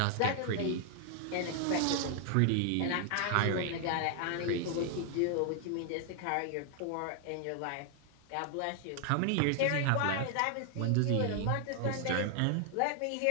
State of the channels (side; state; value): both; different; correlation 0.00